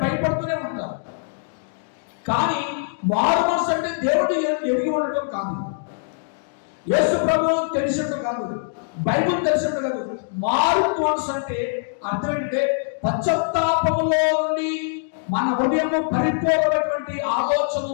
భయపడుతూనే ఉంటారు. కానీ మారు మనసు అంటే దేవుడు ఎరిగి ఉండటం కాదు, యేసు ప్రభు తెలిసినట్టు కాదు, బైబిల్ తెలిసినట్టు కాదు. మారు మనసు అంటే అర్థం ఏంటంటే పశ్చాత్తాపంలో నుండి మన హృదయము పరిపూర్ణమైనటువంటి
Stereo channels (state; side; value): silent; right; digital silence